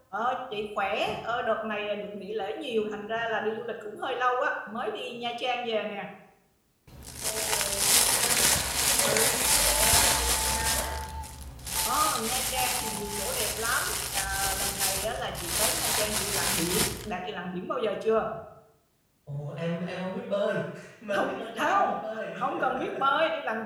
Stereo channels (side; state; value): both; identical; correlation 1.00